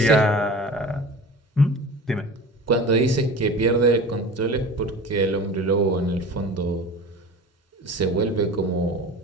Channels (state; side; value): normal; both; correlation 0.36